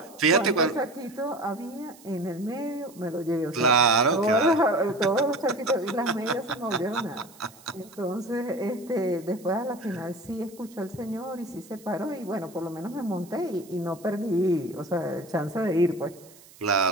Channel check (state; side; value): noise; right; hiss, 23 dB below the sound